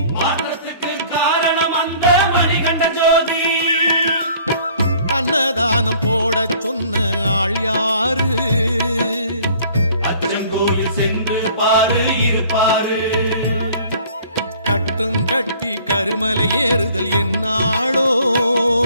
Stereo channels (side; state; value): both; inverted; correlation -0.53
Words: மாற்றத்துக்கு காரணம் அந்த மணிகண்ட ஜோதி அன்னதானம் போட சொன்ன ஆள் யாரு அச்சங்கோயில் சென்று பாரு இருப்பாரு கட்டும் கட்டி கருமலை ஏறுதல் என்னாளோ